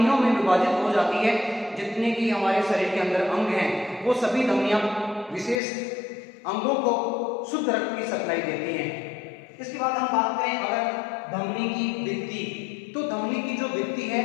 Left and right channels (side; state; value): right; drops out; at 5.6 s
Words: में विभाजित हो जाती है जितने की हमारे शरीर के अंदर अंग हैं। वो सभी धमनियां विशेष अंगों को शुद्ध रक्त की सप्लाई देती हैं। इसके बाद हम बात करें अगर धमनी की भित्ति, तो धमनी की जो भित्ति है